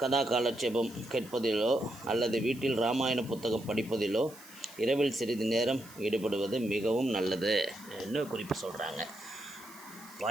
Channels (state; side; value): noise; right; hiss, 20 dB below the sound